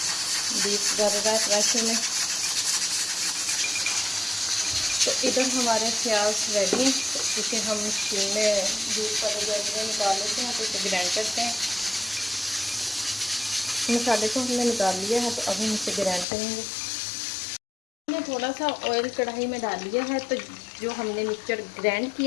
बीफ गल रहा है प्रेशर में। तो इधर हमारे प्याज रेडी हैं, तो इसे हम स्टीम में बीफ वाले जैसे निकाल लेते हैं, तो इसे ग्राइंड करते हैं। मसाले को हमने निकाल लिया है, तो अभी हम इसे ग्राइंड करेंगे। हमने थोड़ा सा ऑयल कढ़ाई में डाल लिया है, तो जो हमने मिक्सचर ग्राइंड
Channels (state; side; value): drops out; right; at 16.2 s